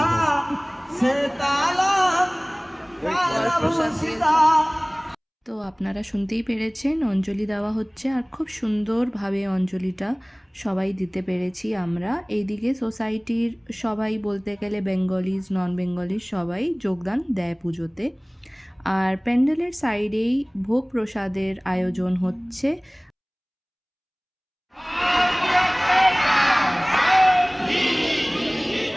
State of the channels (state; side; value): identical; both; correlation 1.00